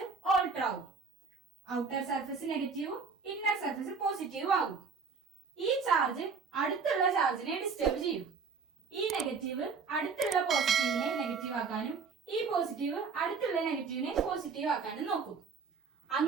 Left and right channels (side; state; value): left; quieter; 5.1 dB